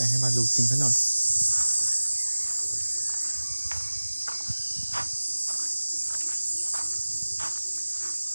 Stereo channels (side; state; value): both; inverted; correlation -1.00